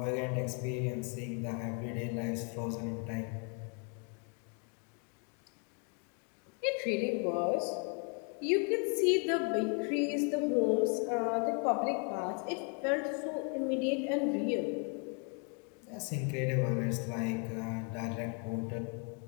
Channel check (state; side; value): quieter; right; 38.5 dB